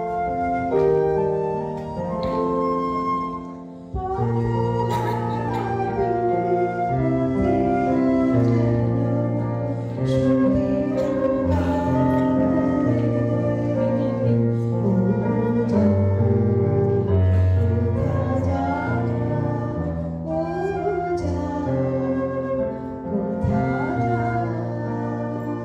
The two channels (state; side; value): identical; both; correlation 1.00